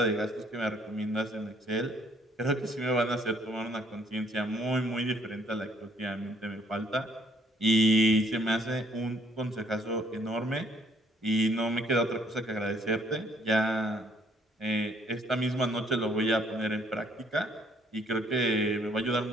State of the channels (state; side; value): normal; both; correlation 0.64